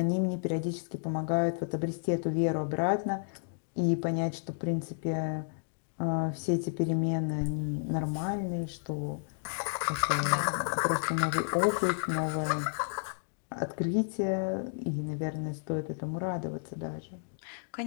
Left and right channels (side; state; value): right; silent; digital silence